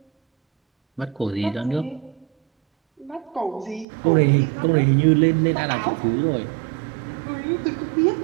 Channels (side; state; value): left; drops out; at 3.9 s